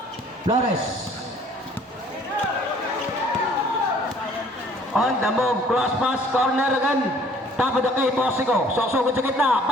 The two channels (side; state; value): both; normal; correlation 0.56